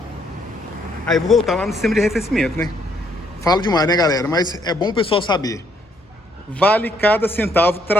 aí eu vou voltar lá no sistema de arrefecimento, né? Falo demais, né, galera? Mas é bom o pessoal saber. vale cada centavo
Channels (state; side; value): normal; both; correlation 0.70